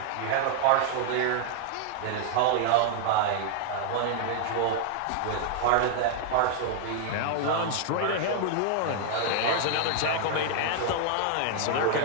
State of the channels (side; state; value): both; different; correlation 0.00